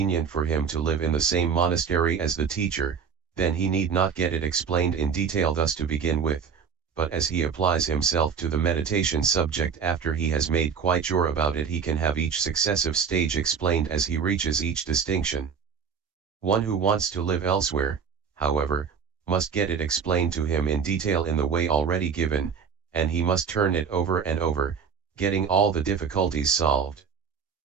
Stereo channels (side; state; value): left; quieter; 6.5 dB